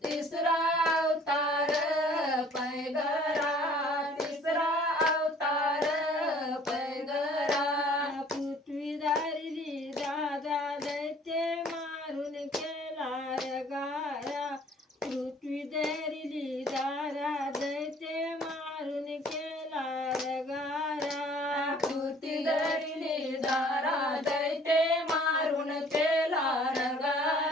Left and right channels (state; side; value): normal; both; correlation 0.54